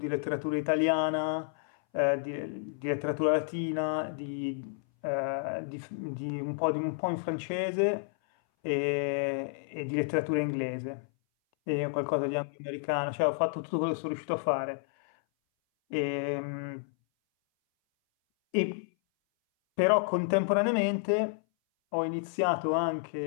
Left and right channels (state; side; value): silent; right; 57 dB below the other